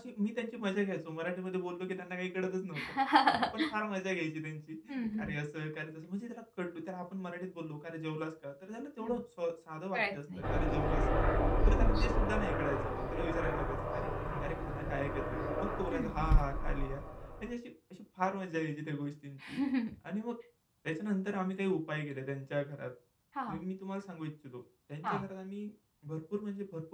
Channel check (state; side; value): identical; both; correlation 1.00